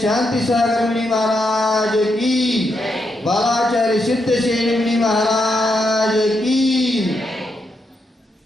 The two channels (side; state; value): both; normal; correlation 0.82